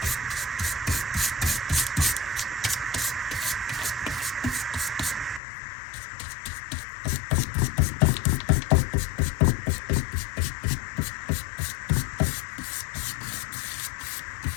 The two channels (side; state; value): right; drops out; at 5.4 s